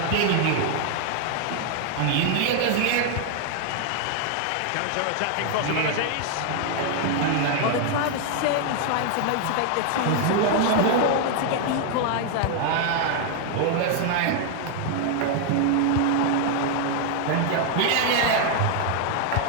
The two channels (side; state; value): both; different; correlation 0.00